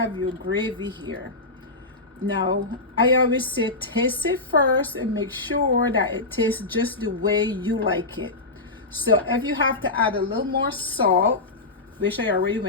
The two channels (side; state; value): right; quieter; 3.2 dB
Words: your gravy here, now I always say taste it first and make sure that it tastes just the way you like it. So if you have to add a little more salt, which I already